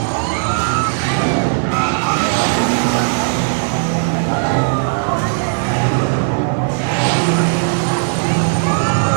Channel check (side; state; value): left; silent; digital silence